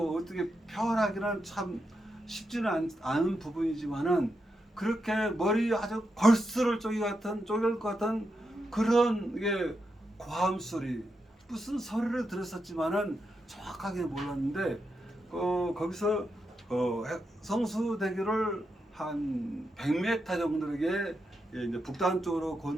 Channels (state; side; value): normal; both; correlation 0.85